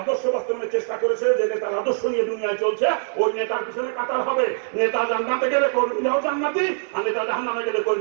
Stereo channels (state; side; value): silent; left; 62 dB below the other